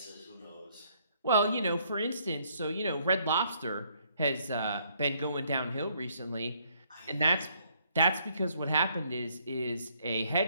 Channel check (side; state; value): both; inverted; correlation -0.67